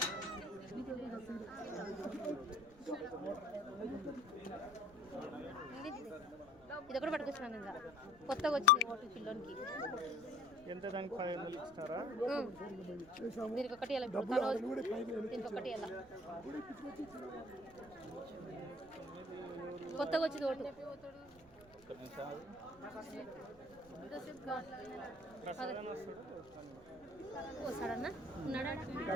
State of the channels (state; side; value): noise; right; rumble, 23 dB below the sound